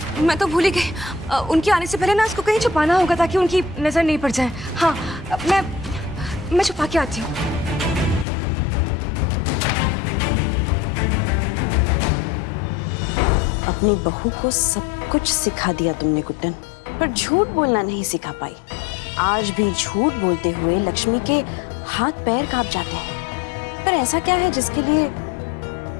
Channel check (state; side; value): drops out; right; at 8.2 s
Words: मैं तो भूल ही गई। उनके आने से पहले ना इसको कहीं छुपाना होगा ताकि उनकी नजर नहीं पड़ जाए। हाँ, मैं छुपा के आती हूँ। अपनी बहू को सब कुछ सिखा दिया तुमने गुड्डन, पर झूठ बोलना नहीं सिखा पाई। आज भी झूठ बोलते हुए लक्ष्मी के हाथ पैर कांप जाते हैं। पर ऐसा क्या है जिसके लिए